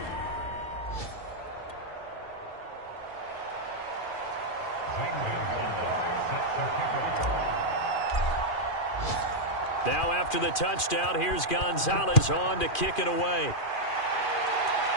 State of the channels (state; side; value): late; right; 2.4 ms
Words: Now after the touchdown, here's Gonzalez on to kick it away.